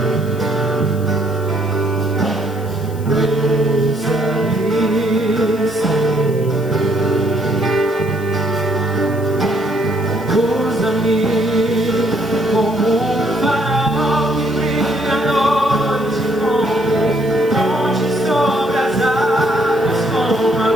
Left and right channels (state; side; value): noise; left; hiss, 22 dB below the sound